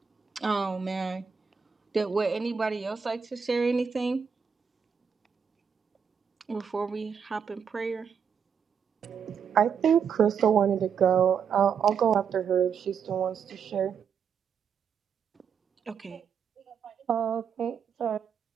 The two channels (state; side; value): quieter; left; 6.9 dB